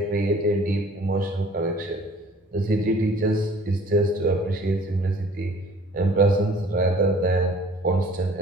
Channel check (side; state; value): both; normal; correlation 0.52